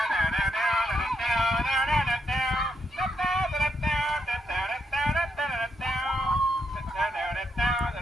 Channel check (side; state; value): both; normal; correlation 0.80